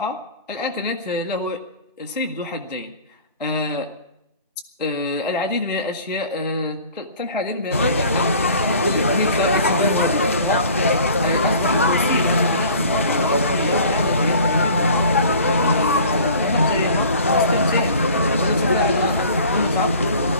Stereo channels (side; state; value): both; inverted; correlation -0.47